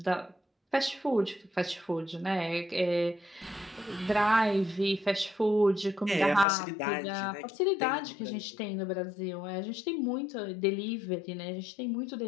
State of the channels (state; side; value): drops out; right; at 6.5 s